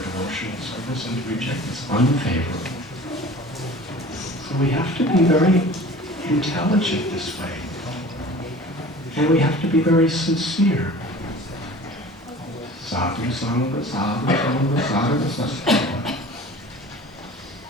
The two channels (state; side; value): normal; both; correlation 0.42